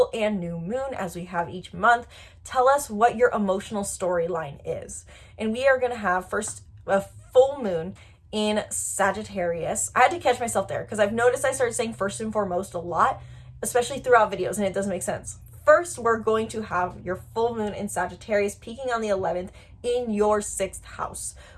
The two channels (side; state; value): both; identical; correlation 1.00